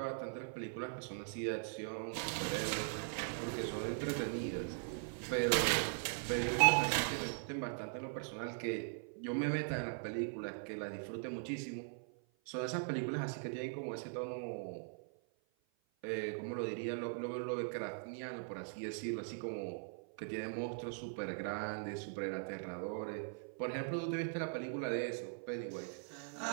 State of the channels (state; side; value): silent; left; 51 dB below the other